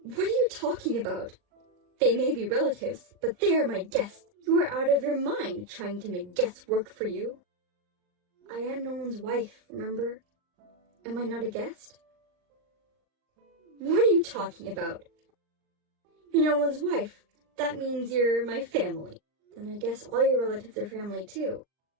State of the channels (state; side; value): late; left; 39 ms